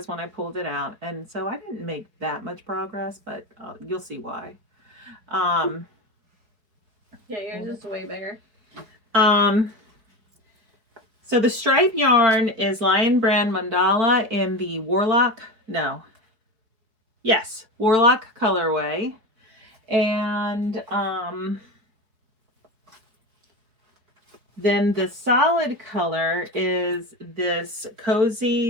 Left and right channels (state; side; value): late; left; 4.7 ms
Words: when I pulled it out. And so I didn't make that much progress, but you'll see why. Yeah, yours is way bigger. So the stripe yarn is Lion Brand Mandala in the Warlock colorway. And then the solid color is this